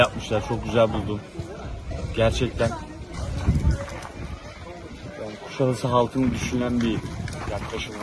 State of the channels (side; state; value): both; identical; correlation 1.00